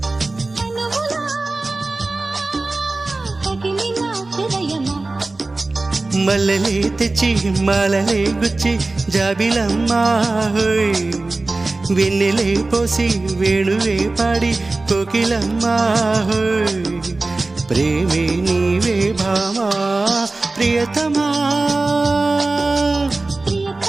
మల్లెలే తెచ్చి మాలలే గుచ్చి జాబిలమ్మా హోయ్ వెన్నెలే పోసి వేణువే పాడి కోకిలమ్మా హోయ్ ప్రేమే నీవే భామా ప్రియతమా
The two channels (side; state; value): left; quieter; 3.3 dB